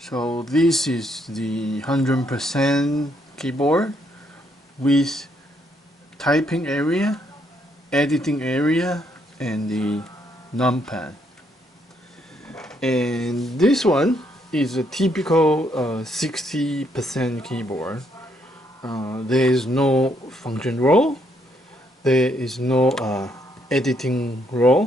this is the 100% keyboard with typing area, editing area, and the numpad. And this one is a typical 60% keyboard. There is no function role, there is no editing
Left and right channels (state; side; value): normal; both; correlation 0.73